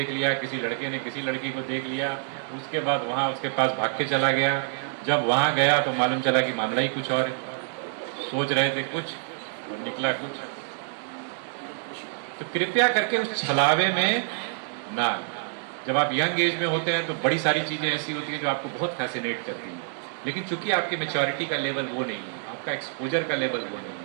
लिया, किसी लड़के ने किसी लड़की को देख लिया, उसके बाद वहां उसके पास भाग के चला गया। जब वहां गया तो मालूम चला कि मामला ही कुछ और है, सोच रहे थे कुछ और निकला कुछ। तो कृपया करके उस छलावे में ना, जब आप यंग एज में होते हैं तो बड़ी सारी चीजें ऐसी होती हैं जो आपको बहुत फैसिनेट करती हैं, लेकिन चूंकि आपकी मैच्योरिटी का लेवल वो नहीं है, आपका एक्सपोजर का लेवल वो नहीं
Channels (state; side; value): silent; left; 60 dB below the other